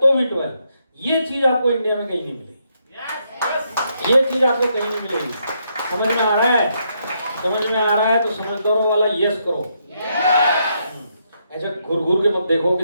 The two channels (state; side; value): inverted; both; correlation -0.77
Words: भी 12। ये चीज आपको इंडिया में कहीं नहीं मिलेगी। ये चीज आपको कहीं नहीं मिलेगी। समझ में आ रहा है? समझ में आ रहा है तो समझदारों वाला यस करो। ऐसे घुर घुर के मत देखो कि